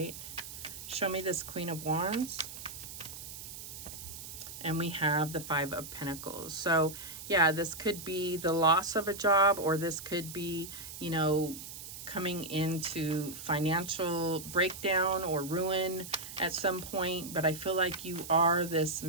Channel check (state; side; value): noise; right; hiss, 11 dB below the sound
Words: Show me this Queen of Wands. And we have the Five of Pentacles. So, yeah, this could be the loss of a job, or this could be, you know, coming into financial breakdown or ruin at some point. But I feel like you are this